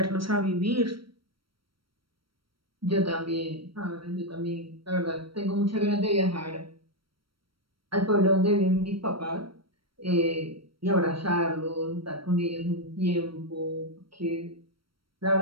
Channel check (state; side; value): late; left; 0.74 ms